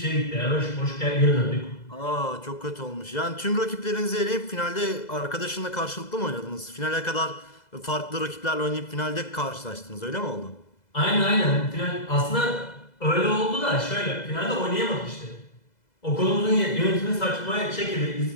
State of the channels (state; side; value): late; right; 2.0 ms